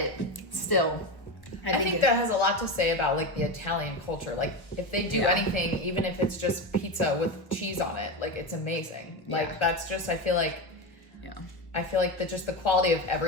still, I think that has a lot to say about like the Italian culture. Like, if they do anything, even if it's just pizza with cheese on it, like, it's amazing. Like, that's just, I feel like just the quality of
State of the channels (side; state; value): right; late; 1.1 ms